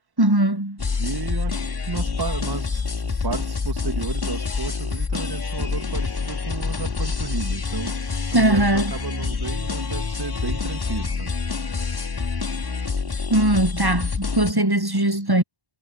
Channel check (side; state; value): left; late; 1.1 ms